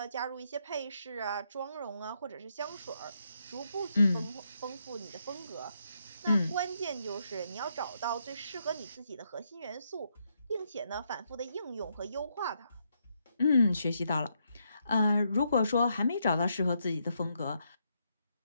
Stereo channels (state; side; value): inverted; both; correlation -0.78